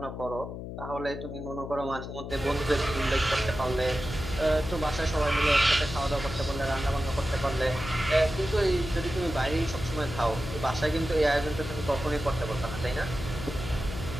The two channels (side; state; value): left; noise; hum, 8 dB below the sound